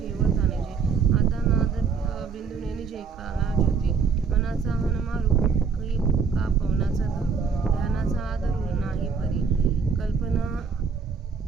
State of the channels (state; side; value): quieter; left; 5.6 dB